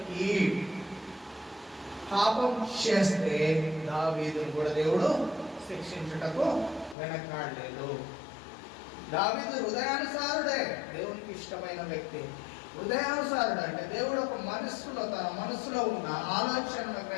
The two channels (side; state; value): right; drops out; at 7.0 s